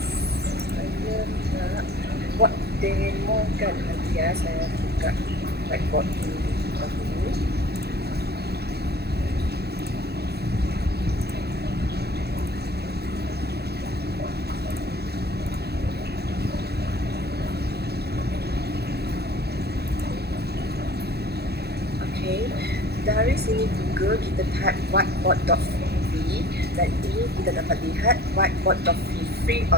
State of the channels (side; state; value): left; late; 0.47 ms